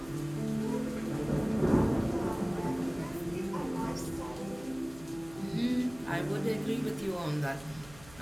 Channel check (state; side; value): noise; right; hum, 20 dB below the sound